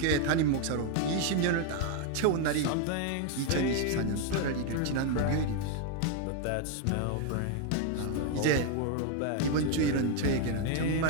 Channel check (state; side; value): different; both; correlation 0.01